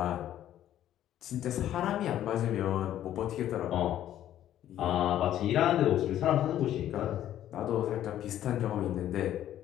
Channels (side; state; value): right; quieter; 11.9 dB